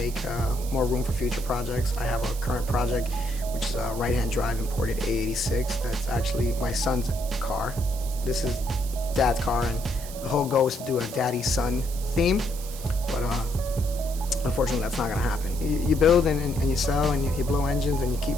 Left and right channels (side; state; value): right; noise; hiss, 14 dB below the sound